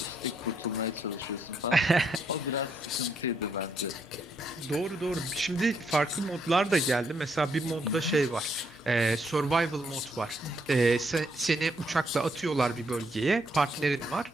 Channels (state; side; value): normal; both; correlation 0.74